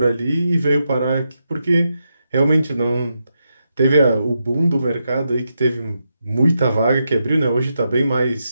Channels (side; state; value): both; inverted; correlation -0.85